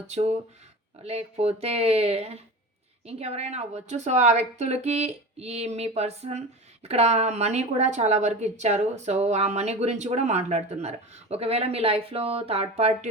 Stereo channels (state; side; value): normal; both; correlation 0.30